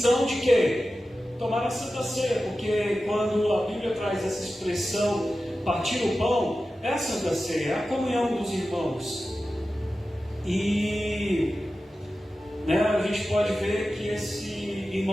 de quê? Tomar a Santa Ceia, porque quando a Bíblia traz essa expressão, partir o pão, é a Santa Ceia, é a comunhão dos irmãos. E a gente pode ver que esse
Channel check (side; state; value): both; normal; correlation 0.94